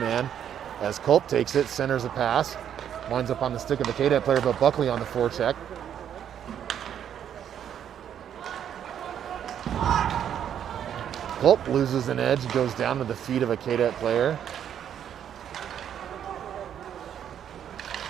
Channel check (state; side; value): quieter; left; 9.4 dB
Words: as Culp takes it, centers a pass. Winds up on the stick of the Cadet player, but Buckley on the forecheck. Culp loses an edge, goes down to the feet of a Cadet player.